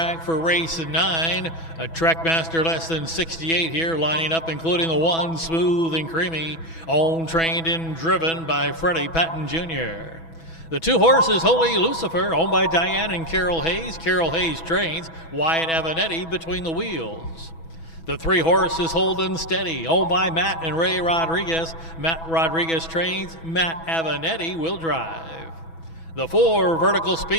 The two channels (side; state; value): right; late; 6.1 ms